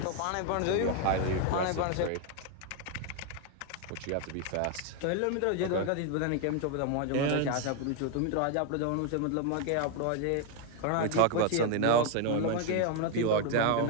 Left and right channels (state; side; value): different; both; correlation 0.01